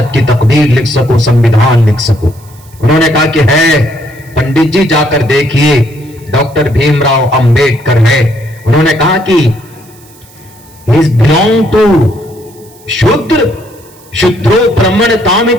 की तकदीर लिख सकूं, संविधान लिख सकूं। उन्होंने कहा कि है पंडित जी, जाकर देखिए, डॉक्टर भीमराव अंबेडकर है। उन्होंने कहा कि ही बिलोंग टू शूद्र, शूद्रो ब्राह्मण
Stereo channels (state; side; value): noise; right; hiss, 26 dB below the sound